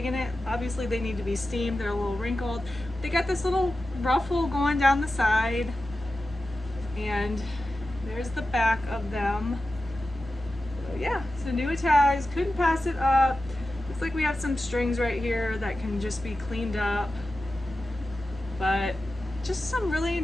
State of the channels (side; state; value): both; normal; correlation 0.93